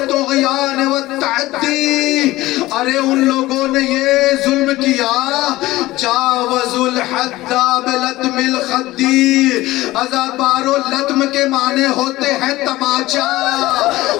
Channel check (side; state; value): right; quieter; 17.8 dB